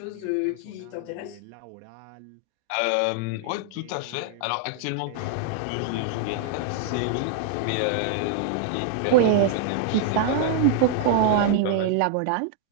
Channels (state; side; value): different; both; correlation -0.01